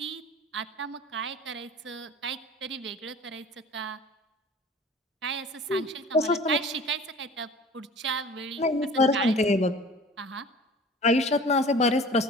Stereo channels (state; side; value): normal; both; correlation 0.44